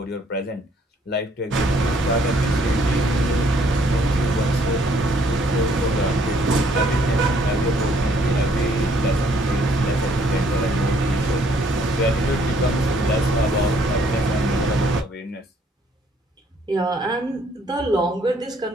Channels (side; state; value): both; normal; correlation 0.65